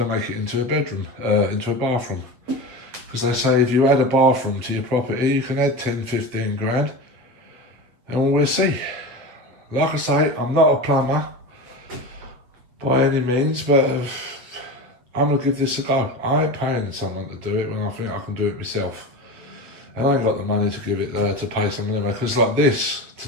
to make it into a bedroom, into a bathroom, because they say if you add a bathroom to your property you can add 10-15 grand, and we'll see. Like I say, I'm not a plumber by any means, but I'm going to give this a go. I ain't paying someone to do it when I think I can do it myself. And I ain't got the money to give it to pay someone anyway, because like this, to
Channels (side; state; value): left; late; 8.3 ms